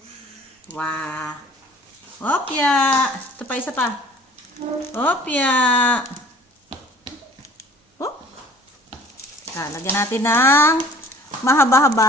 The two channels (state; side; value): normal; both; correlation 0.50